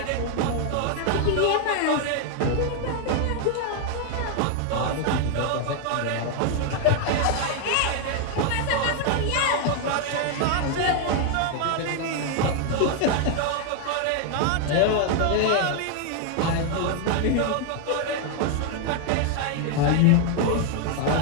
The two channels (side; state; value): both; different; correlation 0.00